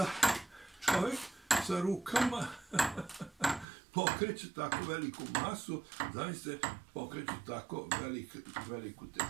čovjek sa rukama pokreće tako veliku masu, zamislite, pokreće tako veliku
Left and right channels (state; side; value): drops out; left; at 3.7 s